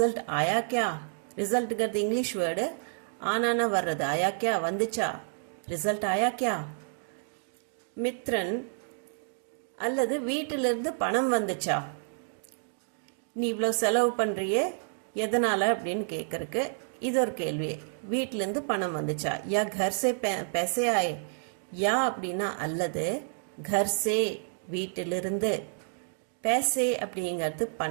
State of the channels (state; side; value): silent; left; digital silence